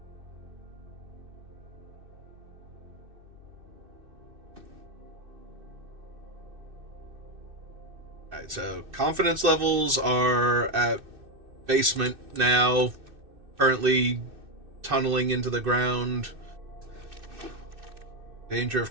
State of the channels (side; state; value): left; late; 2.6 ms